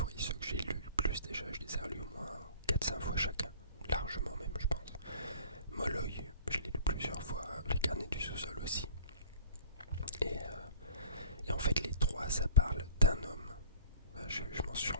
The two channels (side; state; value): both; inverted; correlation -0.46